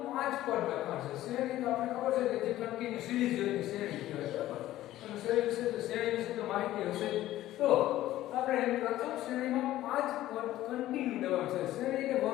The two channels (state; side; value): quieter; right; 14.6 dB